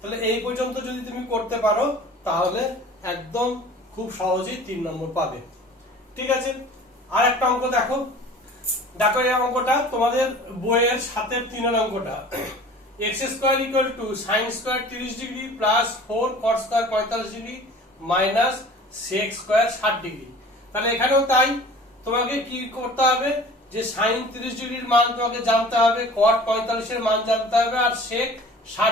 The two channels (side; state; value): both; normal; correlation 0.44